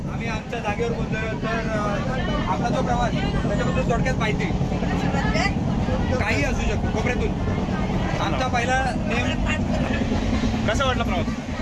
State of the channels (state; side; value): identical; both; correlation 1.00